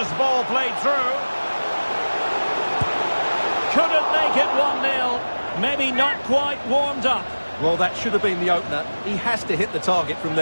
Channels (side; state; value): both; inverted; correlation -1.00